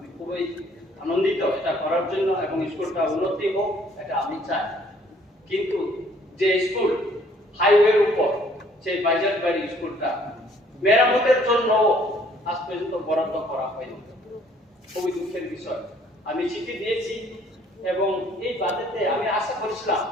খুবই আনন্দিত এটা করার জন্য, এবং স্কুলটা উন্নতি হোক এটা আমি চাই। কিন্তু যে স্কুল হাইওয়ের উপর, সেই বাইজারবাড়ি স্কুলটা মেরামতের জন্য আজ পর্যন্ত বরাদ্দ করা হয়নি, খুবই দুঃখের বিষয়। আমি চিঠি দিয়েছি এবং এই বাজেটে আমি আশা করেছিলাম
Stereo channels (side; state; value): both; normal; correlation 0.61